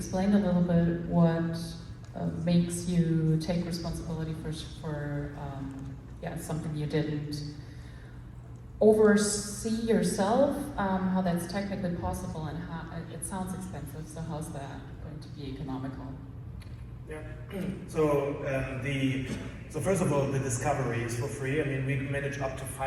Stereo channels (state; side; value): identical; both; correlation 1.00